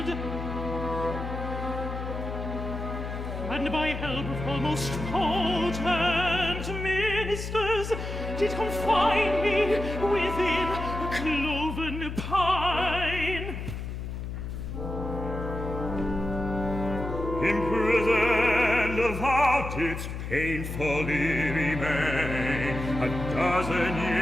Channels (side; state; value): left; noise; hum, 6 dB below the sound